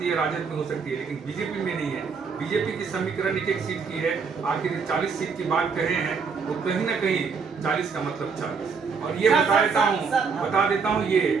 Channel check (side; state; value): left; quieter; 5.4 dB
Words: है, राजद में हो सकती है, लेकिन बीजेपी में नहीं है। बीजेपी की समीकरण एक सीट की है, आखिर 40 सीट की बात कर रहे हैं तो कहीं ना कहीं 40 का मतलब 40। और ये बता देता हूँ ये